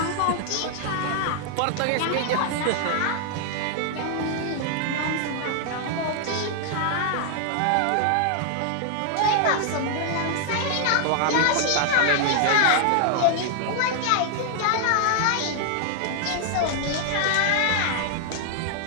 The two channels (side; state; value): both; different; correlation 0.00